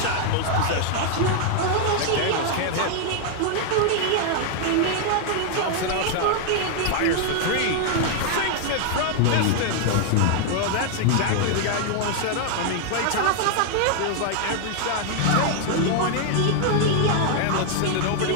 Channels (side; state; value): both; different; correlation 0.00